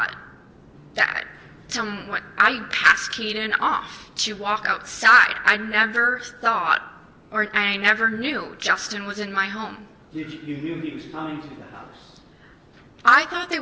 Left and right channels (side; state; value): both; identical; correlation 1.00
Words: that I passed Caden off to walk outside. I never thought, or I never knew Justin was in my home. You knew he was coming to the house? I thought they